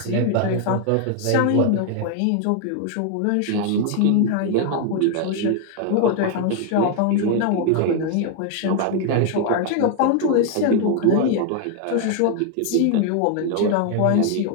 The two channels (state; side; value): different; both; correlation 0.00